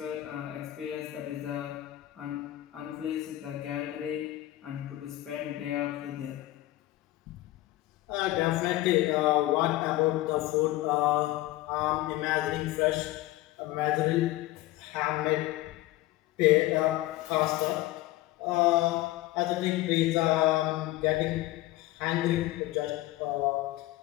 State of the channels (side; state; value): right; quieter; 16.8 dB